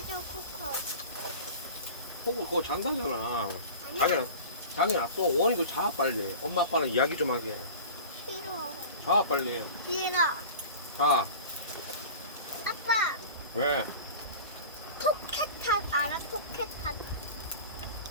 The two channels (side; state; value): both; inverted; correlation -0.37